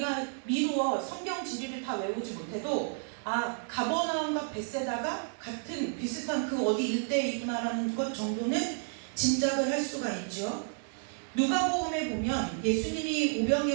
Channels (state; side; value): silent; left; 57 dB below the other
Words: 미루어 성경 지리를 다 외우지 못해도 가버나움과 벳세다가 같은 비슷한 그 어디 일대이구나라는 것 정도는 짐작을 할 수가 있죠. 누가복음에 보면 예수님이